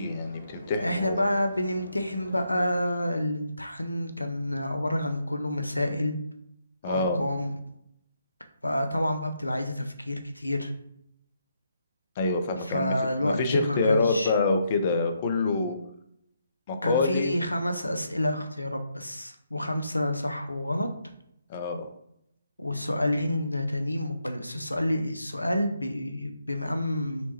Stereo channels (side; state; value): both; inverted; correlation -0.79